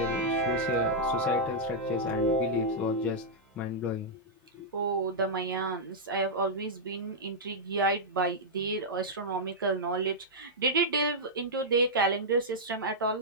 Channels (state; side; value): normal; both; correlation -0.09